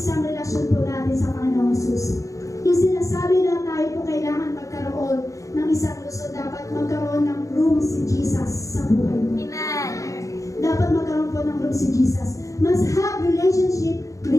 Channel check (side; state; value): right; late; 0.16 ms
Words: relasyon po natin sa Panginoong Hesus. Yung sinasabi na tayo po kailangan magkaroon ng isang lungsod, dapat magkaroon ng room si Jesus sa buhay mo. Amen. Dapat magkaroon po ng room si Jesus. Must have relationship